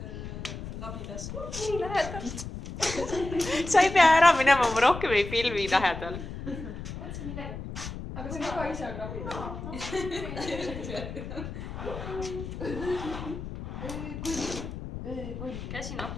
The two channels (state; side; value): noise; left; rumble, 8 dB below the sound